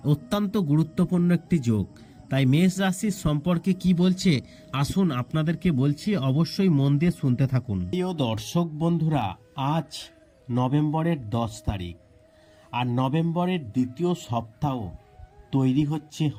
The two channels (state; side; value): identical; both; correlation 1.00